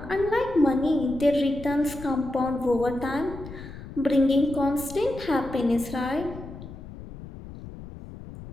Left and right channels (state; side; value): noise; left; rumble, 13 dB below the sound